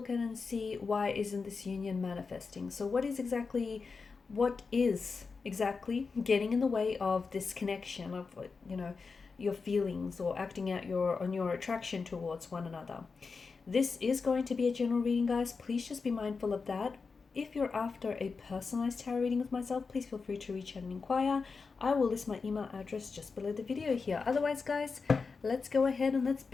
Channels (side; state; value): right; quieter; 4.7 dB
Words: at and see why isn't this union manifesting. So what is exactly getting in the way of this connection of, your feelings or acting out on your attraction towards one another? This is going to be a general reading, guys. Please just be mindful of that. If you're after a personalized tarot reading with myself, please feel free to reach out and inquire. I will list my email address just below the video here. Otherwise, guys, let's go ahead and let's